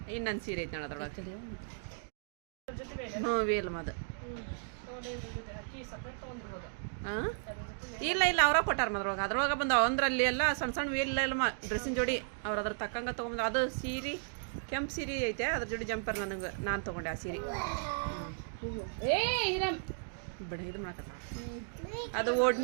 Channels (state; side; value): silent; left; digital silence